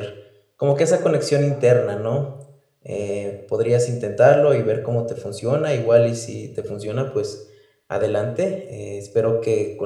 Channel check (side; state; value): both; identical; correlation 1.00